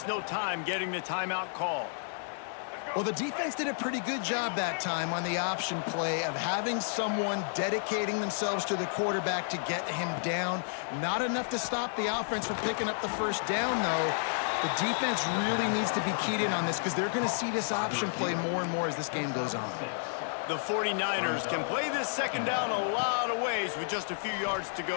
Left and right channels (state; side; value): silent; right; 57 dB below the other